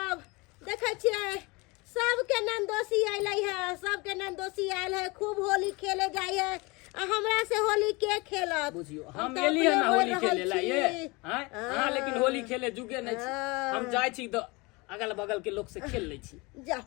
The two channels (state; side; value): quieter; right; 25.8 dB